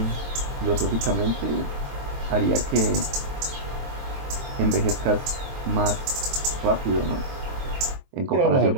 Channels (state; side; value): late; left; 23 ms